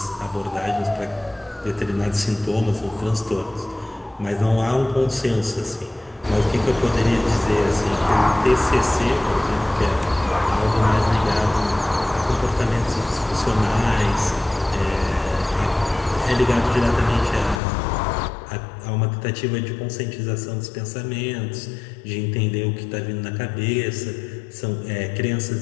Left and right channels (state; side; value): drops out; right; at 17.6 s